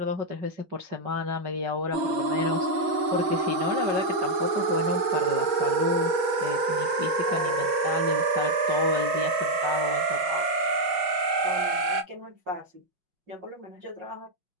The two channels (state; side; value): late; left; 6.2 ms